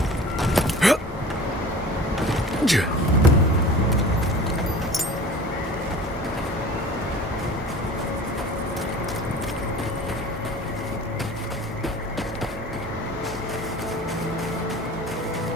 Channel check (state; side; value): normal; both; correlation 0.42